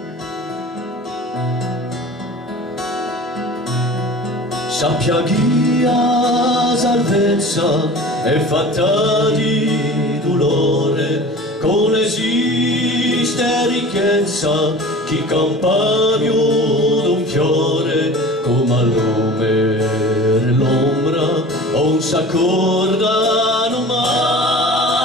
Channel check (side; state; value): both; normal; correlation 0.39